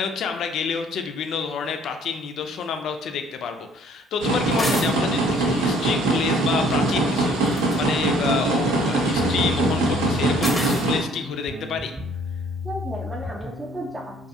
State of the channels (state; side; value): normal; both; correlation 0.58